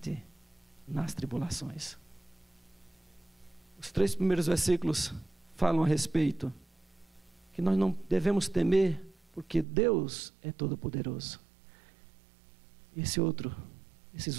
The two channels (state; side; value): drops out; left; at 9.7 s